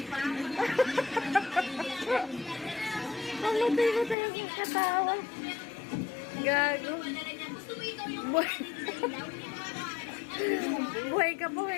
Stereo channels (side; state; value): right; drops out; at 4.2 s